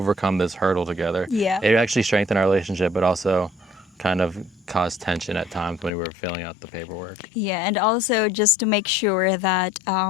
this hurdle together. Yeah. It actually strengthened our relationship, but also kind of caused tension at times when we were filling out the paperwork. Yeah, and also just to make sure that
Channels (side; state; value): right; drops out; at 5.9 s